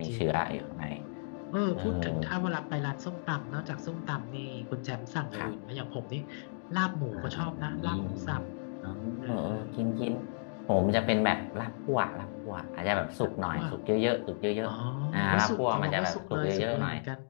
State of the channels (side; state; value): right; silent; digital silence